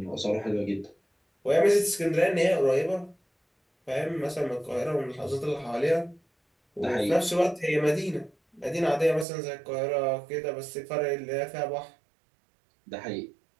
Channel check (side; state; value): left; drops out; at 9.2 s